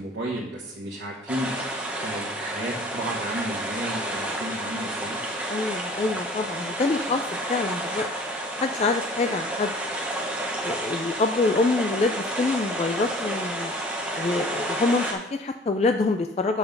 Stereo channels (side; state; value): both; normal; correlation 0.48